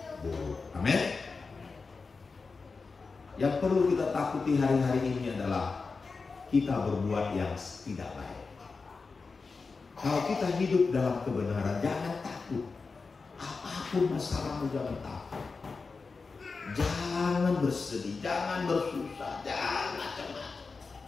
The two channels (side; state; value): right; quieter; 4.4 dB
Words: Amin. Yang perlu kita takuti hari-hari ini adalah kita berbuat yang tidak baik. Kalau kita hidup dalam kebenaran, jangan takut. Apapun masalahmu, jangan takut. Jangan bersedih, jangan bersusah, jangan cemas.